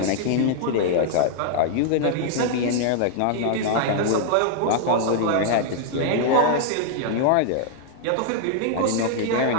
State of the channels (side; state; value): both; different; correlation -0.01